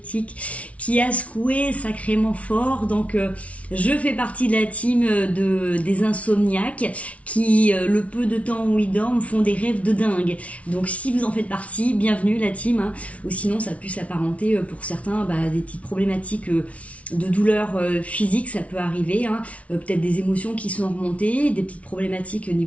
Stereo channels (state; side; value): late; right; 0.065 ms